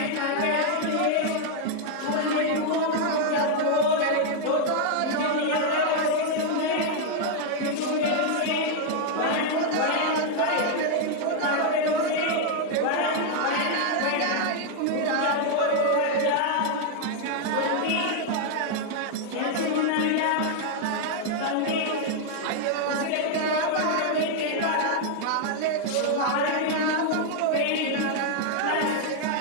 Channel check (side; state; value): both; different; correlation 0.00